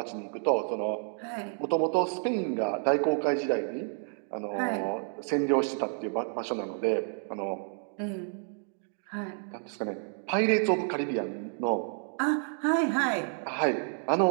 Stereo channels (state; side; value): silent; left; 58 dB below the other